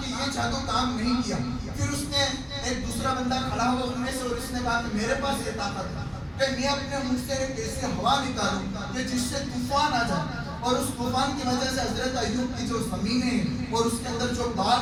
کہ یہ جادو کام نہیں کیا۔ پھر اس نے ایک دوسرا بندہ کھڑا ہوا ان میں سے اور اس نے کہا کہ میرے پاس یہ طاقت ہے کہ میں اپنے منہ سے ایک ایسی ہوا نکالوں کہ جس سے طوفان آ جائے، اور اس طوفان کی وجہ سے حضرت ایوب کی جو زمینیں اور اس کے اندر جو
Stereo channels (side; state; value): both; identical; correlation 1.00